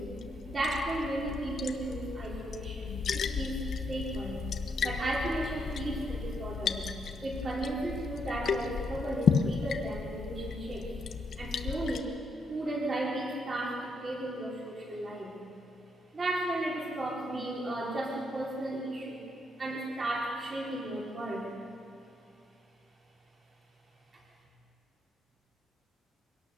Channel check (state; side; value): normal; both; correlation 0.77